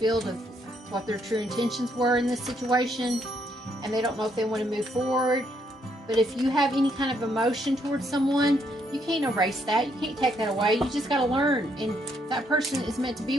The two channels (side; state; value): both; normal; correlation 0.73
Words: of what their true intentions were in this situation, and they don't know if they want to move forward. But if you have any kind of emotion towards someone, you can't erase that. You can't take that away. You just got to learn. And if that person is meant to be